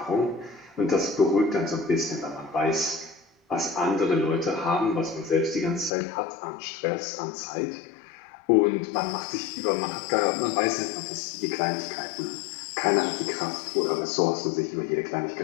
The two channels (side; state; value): right; drops out; at 5.9 s